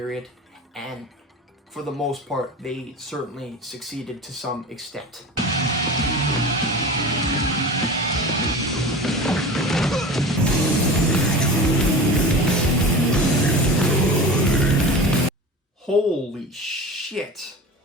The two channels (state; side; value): normal; both; correlation 0.34